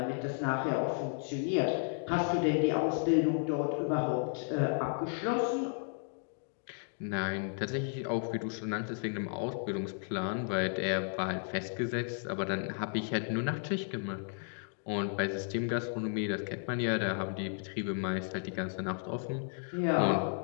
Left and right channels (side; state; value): right; silent; 55 dB below the other